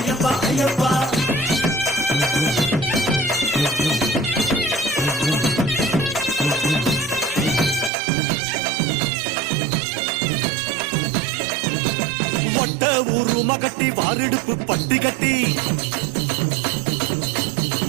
ஐயப்பா வட்ட உருமா கட்டி வாரிடுப்பு பட்டி கட்டி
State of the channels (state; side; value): drops out; left; at 7.9 s